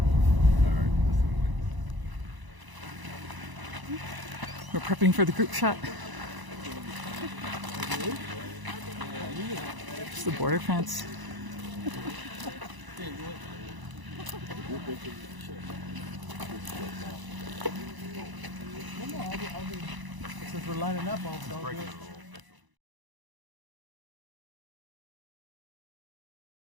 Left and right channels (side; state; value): left; late; 1.0 ms